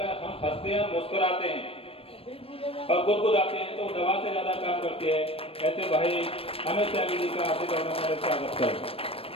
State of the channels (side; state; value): right; late; 0.28 ms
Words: हम हंसते हैं, मुस्कुराते हैं और गुदगुदाते हैं तो दवा से ज्यादा काम करती है। ऐसे भाई अनुज त्यागी जी का आशीर्वाद हमारे स्वागत करें।